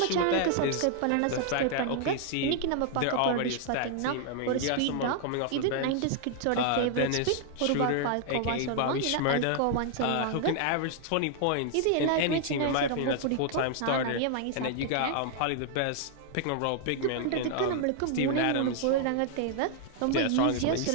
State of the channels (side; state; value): both; different; correlation 0.00